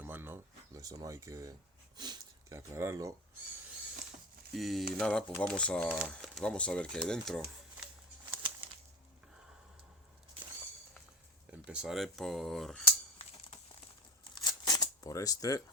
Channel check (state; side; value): normal; both; correlation 0.29